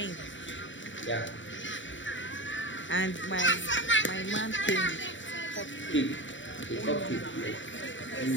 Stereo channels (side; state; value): right; late; 0.55 ms